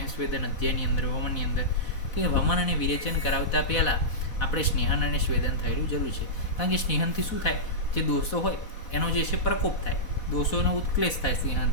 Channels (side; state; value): right; late; 4.1 ms